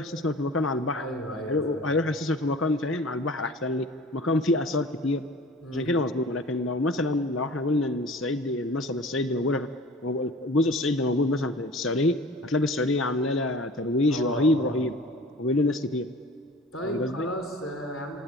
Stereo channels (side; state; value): both; normal; correlation 0.43